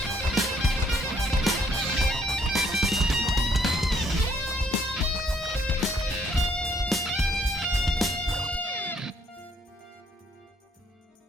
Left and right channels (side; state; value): both; normal; correlation 0.67